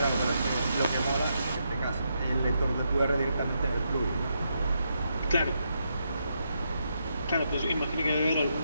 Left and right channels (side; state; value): both; inverted; correlation -0.81